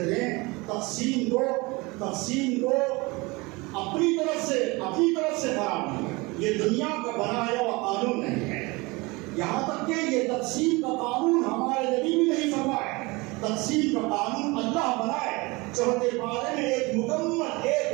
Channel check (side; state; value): left; quieter; 24.7 dB